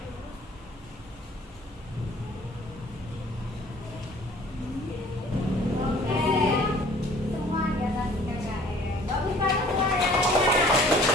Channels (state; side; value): normal; both; correlation 0.53